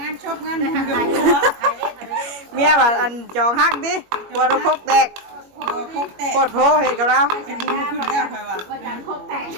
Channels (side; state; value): left; late; 21 ms